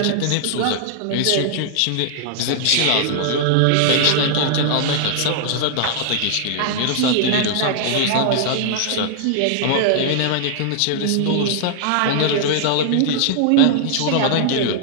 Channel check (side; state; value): both; different; correlation -0.01